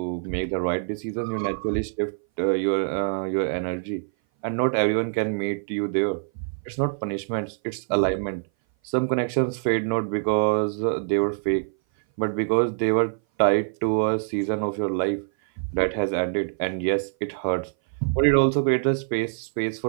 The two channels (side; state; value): left; silent; 58 dB below the other